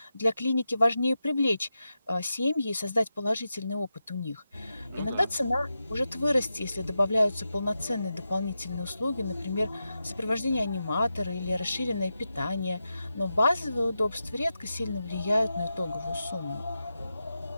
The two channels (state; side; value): inverted; both; correlation -0.90